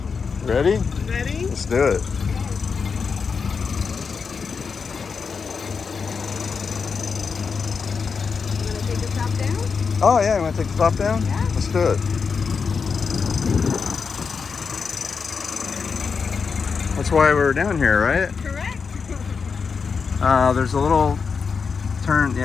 Ready? Ready? Let's do it. You want to take the top down? Oh yeah, you want to take the top down? Yeah. Let's do it. That's why we're down here, right? Correct. There's a little turn,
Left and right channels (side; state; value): right; quieter; 5.5 dB